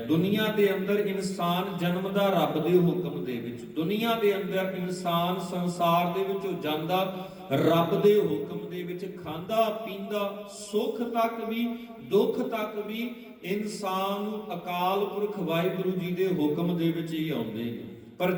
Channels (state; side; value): identical; both; correlation 1.00